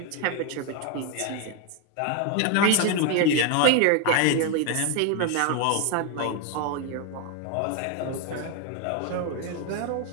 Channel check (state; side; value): different; both; correlation 0.01